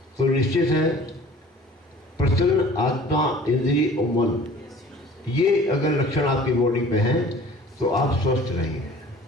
तो निश्चित है प्रसन्न आत्मा, इंद्रिय और मन, ये अगर लक्षण आपकी बॉडी पे हैं तो आप स्वस्थ रहेंगे।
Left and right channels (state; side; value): normal; both; correlation 0.48